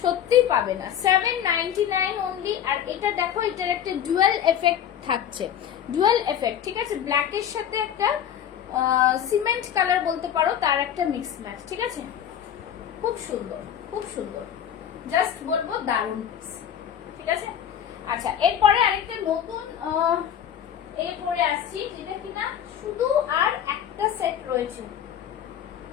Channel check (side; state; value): right; quieter; 9.6 dB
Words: সত্যিই পাবে না, 799 অনলি। আর এটা দেখো, এটার একটা ডুয়াল এফেক্ট থাকছে, ডুয়াল এফেক্ট, ঠিক আছে? ব্ল্যাকের সাথে একটা সিমেন্ট কালার বলতে পারো, তার একটা মিক্স ম্যাচ, ঠিক আছে? খুব সুন্দর, খুব সুন্দর, জাস্ট বলবো দারুণ পিস, ঠিক আছে? আচ্ছা, এরপরে আরেকটা নতুন এই পরে আসছি, যেটা কিনা শুধু আর একটা সেট রয়েছে,